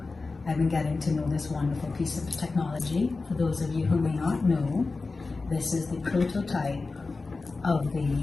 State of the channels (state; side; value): quieter; right; 3.8 dB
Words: I've been getting to know this wonderful piece of technology. For those of you who may not know, this is the prototype of